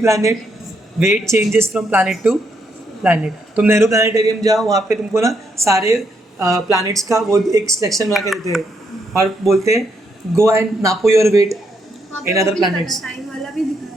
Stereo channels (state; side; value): normal; both; correlation 0.77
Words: weight changes from planet to planet. तुम नेहरू प्लानिटेरियम जाओ, वहाँ पे तुमको ना सारे प्लैनेट्स का वो एक सिलेक्शन बना के देते हैं और बोलते हैं गो एंड नापो your weight in other planets. Time वाला भी दिखा रहा